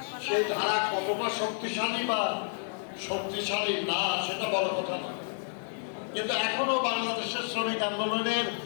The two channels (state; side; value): silent; right; 58 dB below the other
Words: সেই ধারা কতটা শক্তিশালী বা শক্তিশালী না সেটা বড় কথা না, কিন্তু এখনো বাংলাদেশের শ্রমিক আন্দোলনের